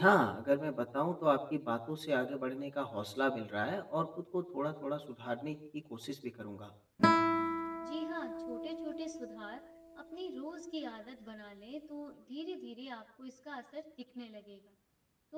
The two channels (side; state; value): both; identical; correlation 1.00